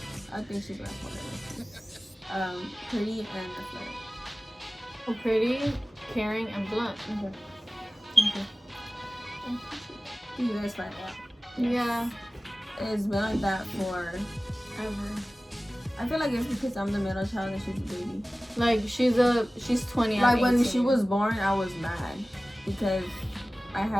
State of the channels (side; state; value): both; normal; correlation 0.97